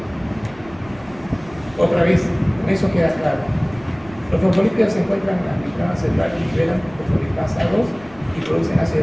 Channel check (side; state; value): right; noise; rumble, 22 dB below the sound